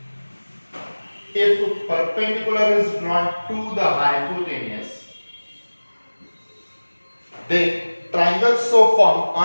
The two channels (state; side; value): inverted; both; correlation -1.00